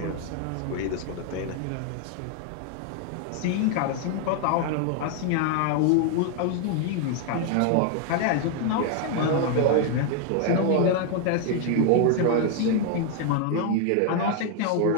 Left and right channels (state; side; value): different; both; correlation 0.00